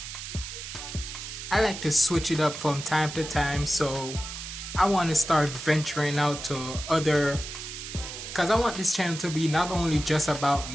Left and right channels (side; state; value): right; noise; hiss, 9 dB below the sound